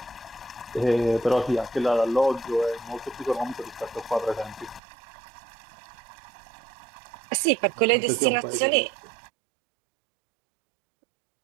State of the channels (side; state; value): left; drops out; at 4.8 s